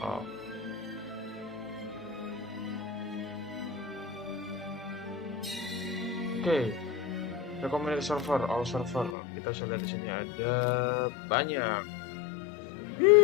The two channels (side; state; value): right; drops out; at 9.2 s